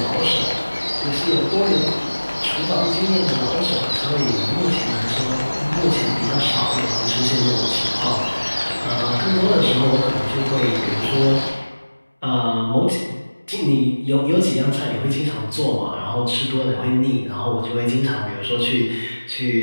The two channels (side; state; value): both; inverted; correlation -1.00